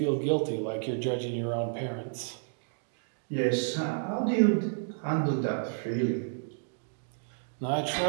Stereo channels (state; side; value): silent; left; digital silence